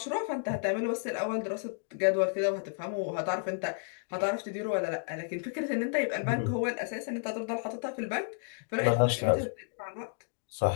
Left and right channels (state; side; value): silent; right; digital silence